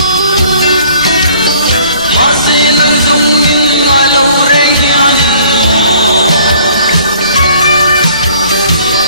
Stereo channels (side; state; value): both; inverted; correlation -0.56